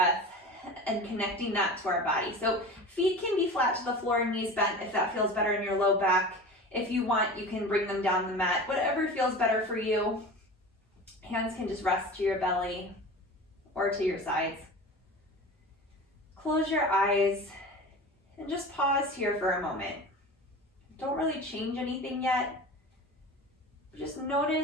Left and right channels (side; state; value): both; normal; correlation 0.34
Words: and connecting that to our body. So feet can be flat to the floor and knees bent if that feels better in your low back. If you want, you can bring them down the mat, whatever feels better for you. Hands can just rest to your belly or to your sides. Close your eyes and just pause here for a moment. Don't really change anything yet. Just